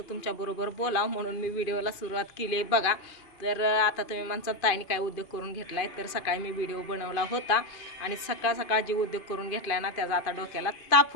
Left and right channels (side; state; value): right; late; 2.5 ms